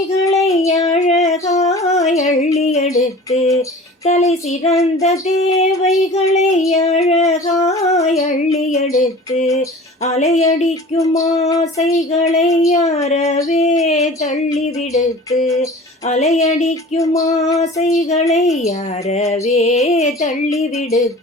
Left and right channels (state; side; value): normal; both; correlation 0.41